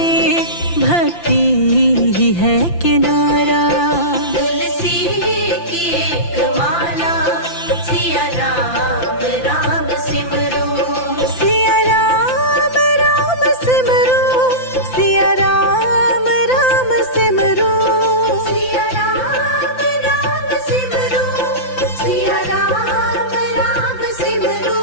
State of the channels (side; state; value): right; late; 5.9 ms